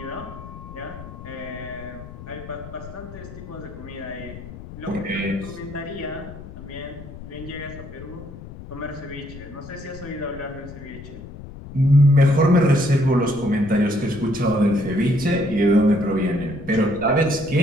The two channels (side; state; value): left; noise; rumble, 14 dB below the sound